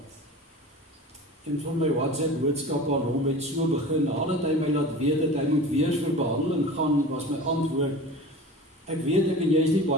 En van my WhatsApp boodskap aan hom het so begin, nadat hy my laat weet dat hy moet weer vir behandeling gaan, was my antwoord, ek weet ek en jy is nie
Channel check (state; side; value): normal; both; correlation 0.36